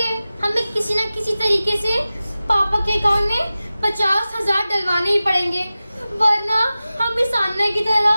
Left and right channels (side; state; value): both; inverted; correlation -0.96